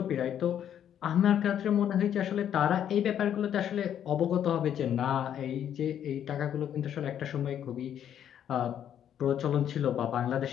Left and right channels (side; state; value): right; quieter; 9.8 dB